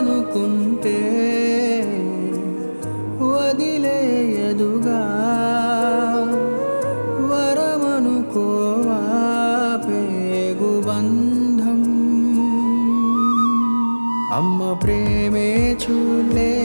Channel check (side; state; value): both; inverted; correlation -1.00